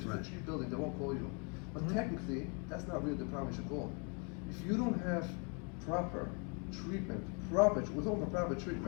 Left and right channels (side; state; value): right; quieter; 34.1 dB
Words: Right. it's a cheap building, they won't call you. But technically, that's not really the problem you should call. If you don't have proper treatment, we're talking about proper